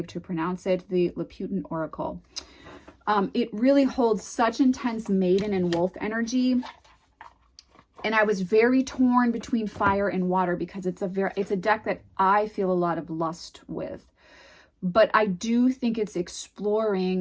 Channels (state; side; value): identical; both; correlation 1.00